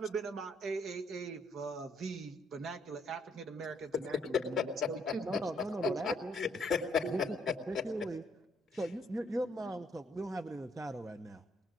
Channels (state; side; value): normal; both; correlation 0.69